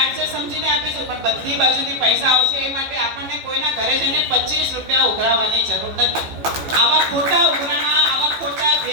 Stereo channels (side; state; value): left; late; 14 ms